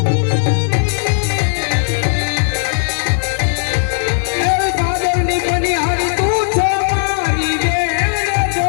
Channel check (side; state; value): right; silent; digital silence